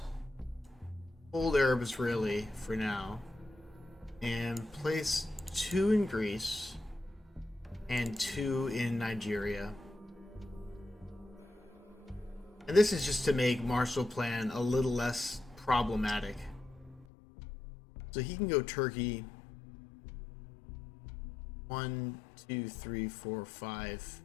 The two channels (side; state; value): right; drops out; at 17.1 s